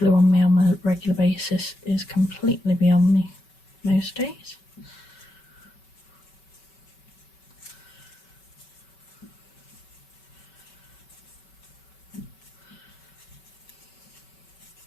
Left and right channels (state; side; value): late; right; 5.3 ms